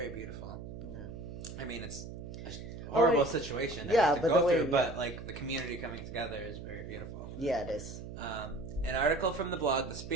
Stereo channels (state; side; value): noise; right; hum, 10 dB below the sound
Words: beautiful. Yeah. I mean, it's a horrible wait. situation to Yeah, have to but go the way- through, but yeah. like the community coming together is very beautiful. Yeah, it is. An article from the blog The